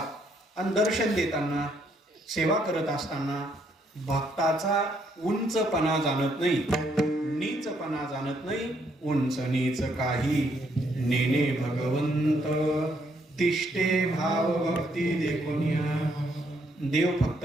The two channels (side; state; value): both; normal; correlation 0.72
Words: आणि दर्शन देताना, सेवा करत असताना भक्ताचा उंचपणा जाणत नाही, नीचपणा जाणत नाही. उंच नीच काही नेने भगवंत, तिष्ठे भाव भक्ती देखुनिया. देव फक्त